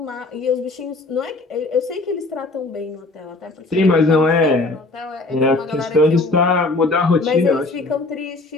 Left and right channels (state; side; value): quieter; right; 3.2 dB